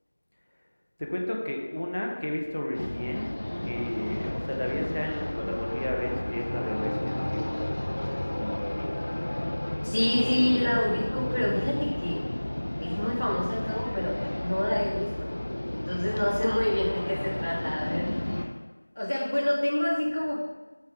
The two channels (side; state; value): both; inverted; correlation -1.00